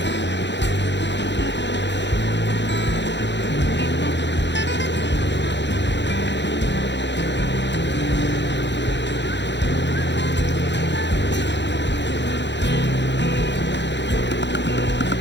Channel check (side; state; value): right; late; 0.52 ms